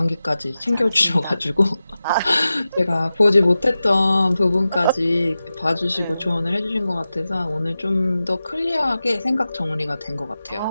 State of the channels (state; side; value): inverted; both; correlation -0.94